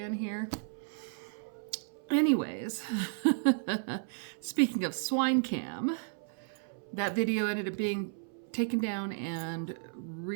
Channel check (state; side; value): silent; left; 55 dB below the other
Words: here. Anyways, speaking of swine cam, that video ended up being taken down and